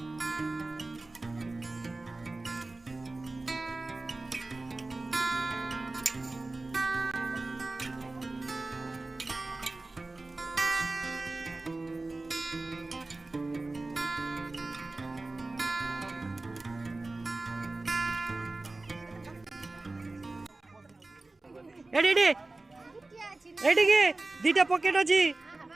ଏଠି ଏଠିକି ଦିଟା ପକେଟ ଅଛି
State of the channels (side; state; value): left; quieter; 3.2 dB